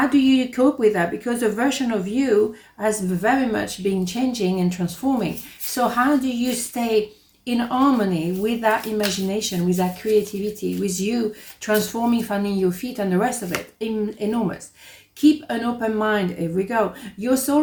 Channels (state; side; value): identical; both; correlation 1.00